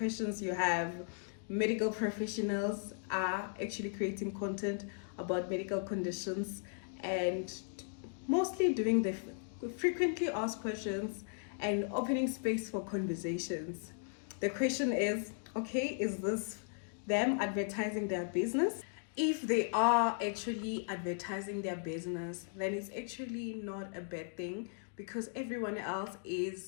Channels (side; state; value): right; silent; digital silence